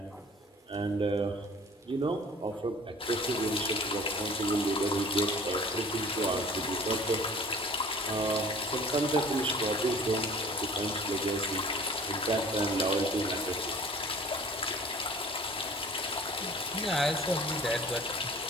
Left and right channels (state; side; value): normal; both; correlation 0.47